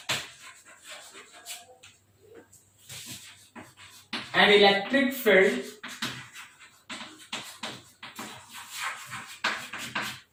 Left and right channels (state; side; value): identical; both; correlation 1.00